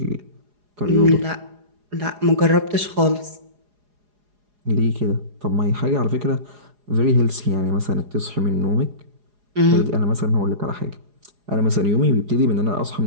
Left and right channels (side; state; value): left; late; 4.8 ms